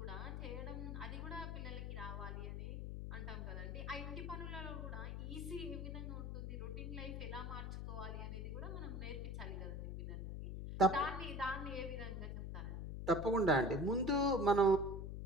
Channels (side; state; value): left; noise; hum, 4 dB below the sound